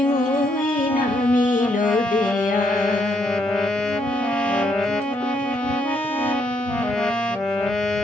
ওই নামিল দেয়া।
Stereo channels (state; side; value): normal; both; correlation 0.75